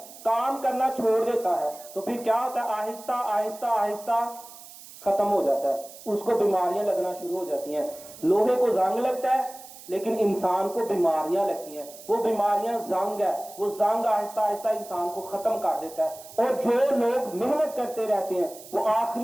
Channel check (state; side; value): noise; right; hiss, 17 dB below the sound